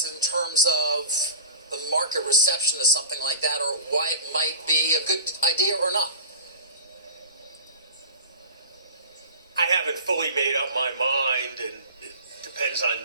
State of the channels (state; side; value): inverted; both; correlation -0.36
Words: in terms of the market reception to something like that, or why it might be a good idea or not? I haven't fully made up my mind, and it depends on